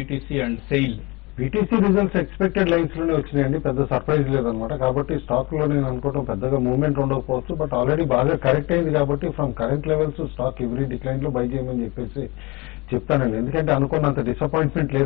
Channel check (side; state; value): right; quieter; 24.9 dB